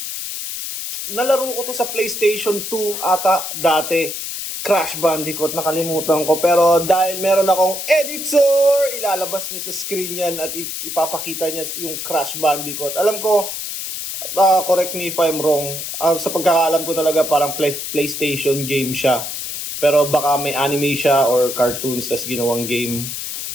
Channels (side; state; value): left; noise; hiss, 6 dB below the sound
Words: Nalaro ko to sa PlayStation 2 ata dati. Crash Bandicoot, nakalimutan ko. Pero dahil meron akong editor, ilalabas niya sa screen yan at ipapakita niya yung Crash Bandicoot. Alam ko, correct me if I'm wrong, sa pagkakaalam ko talaga parang PlayStation game siya. Pero baka may anime siya or cartoons tas ginawang game.